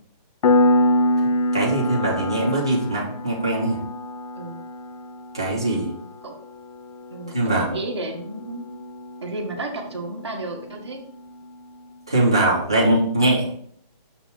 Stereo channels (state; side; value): inverted; both; correlation -0.55